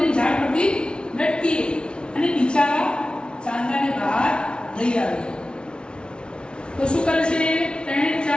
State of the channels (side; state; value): right; late; 0.056 ms